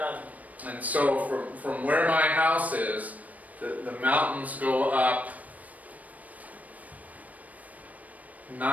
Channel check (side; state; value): left; late; 0.073 ms